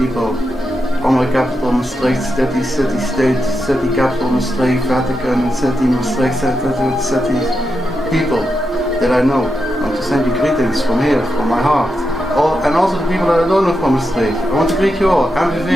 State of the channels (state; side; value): normal; both; correlation 0.86